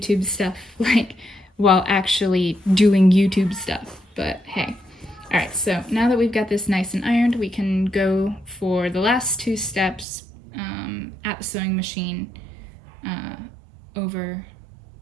stuff like while actually doing YouTube stuff, but hey. All right, so now that we've got this nice and ironed, we can go for the last two steps at the sewing machine over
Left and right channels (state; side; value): drops out; left; at 10.1 s